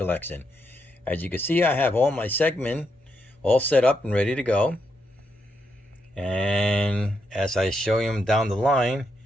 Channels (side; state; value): both; normal; correlation 0.81